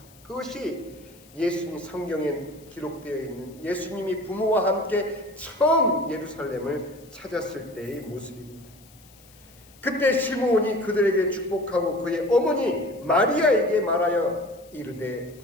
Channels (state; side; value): noise; left; hiss, 26 dB below the sound